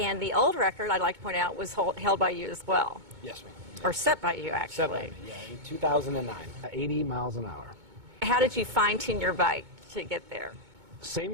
the old record, I'd like to point out, was held by you as well. Yes, ma'am. Or set by you, actually. Set by me, yeah, in 2009. 80 miles an hour. How did you fine-tune your bike to get there?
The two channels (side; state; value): left; late; 2.2 ms